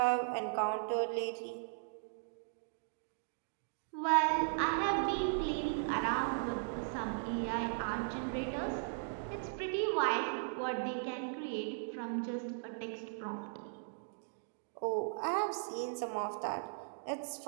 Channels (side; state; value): left; silent; digital silence